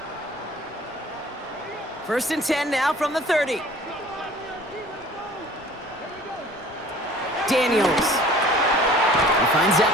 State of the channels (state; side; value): normal; both; correlation 0.49